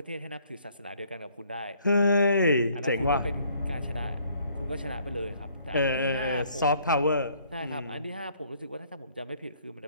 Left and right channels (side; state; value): both; inverted; correlation -0.63